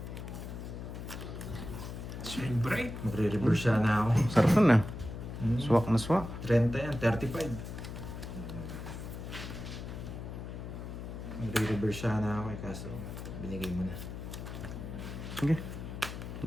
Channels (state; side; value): noise; left; hum, 8 dB below the sound